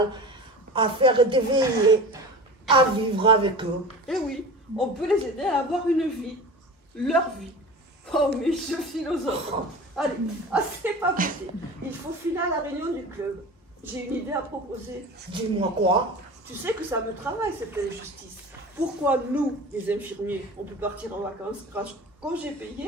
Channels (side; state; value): both; normal; correlation 0.34